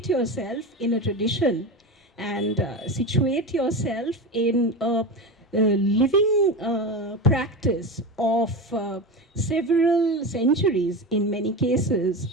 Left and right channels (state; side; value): normal; both; correlation 0.23